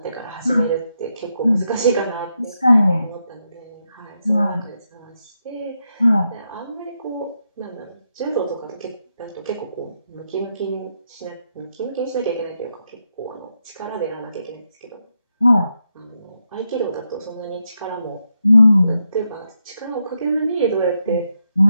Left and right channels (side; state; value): both; inverted; correlation -0.83